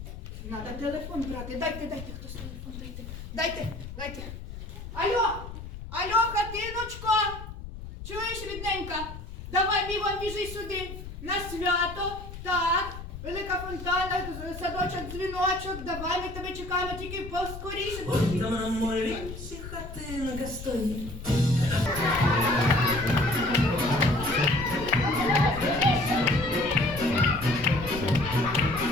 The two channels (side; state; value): left; noise; rumble, 11 dB below the sound